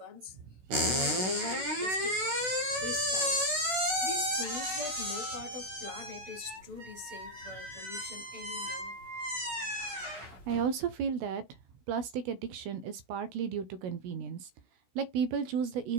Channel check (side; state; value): left; late; 16 ms